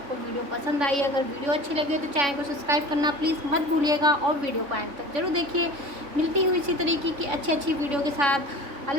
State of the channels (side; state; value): left; late; 3.6 ms